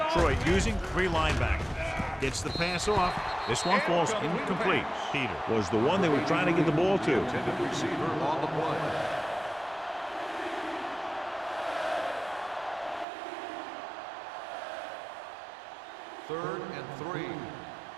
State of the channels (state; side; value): drops out; left; at 13.1 s